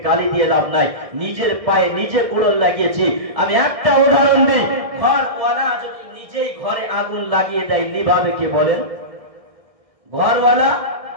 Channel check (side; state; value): left; late; 1.6 ms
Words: গালি দিয়ে লাভ নাই, নিজের পায়ে নিজে কুড়োল লাগিয়েছি। আমি একটা উদাহরণ দিই, ঘরওয়ালা যদি নিজেই ঘরে আগুন লাগিয়ে দেয়, নিভাবে কে বলেন? ঘরওয়ালা